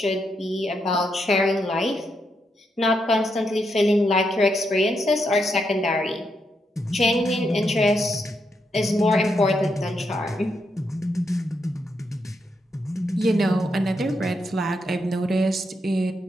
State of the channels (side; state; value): both; normal; correlation 0.81